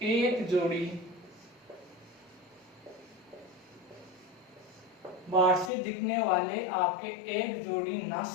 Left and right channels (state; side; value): drops out; right; at 5.7 s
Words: एक जोड़ी, बाहर से दिखने वाले आपके एक जोड़ी